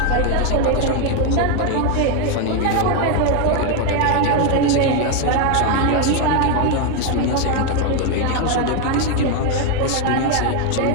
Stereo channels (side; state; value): both; different; correlation 0.01